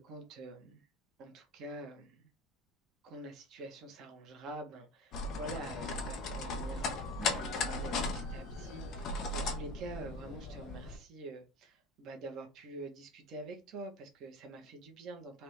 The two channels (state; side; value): normal; both; correlation 0.34